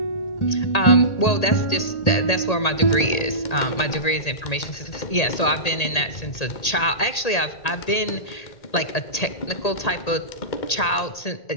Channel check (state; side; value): late; right; 1.8 ms